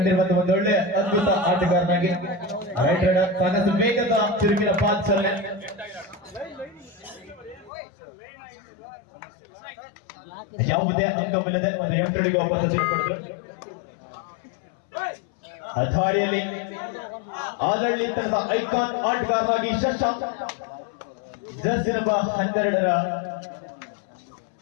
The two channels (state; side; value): drops out; right; at 7.7 s